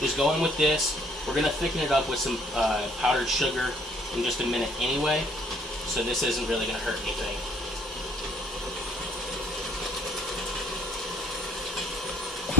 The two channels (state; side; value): normal; both; correlation 0.60